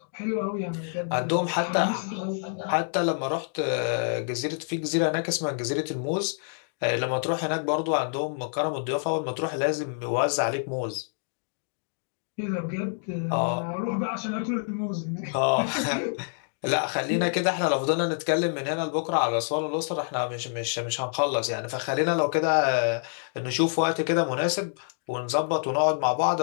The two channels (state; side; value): silent; right; digital silence